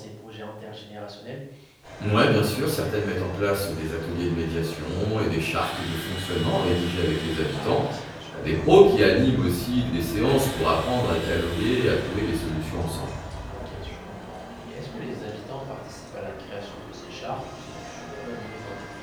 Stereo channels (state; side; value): identical; both; correlation 1.00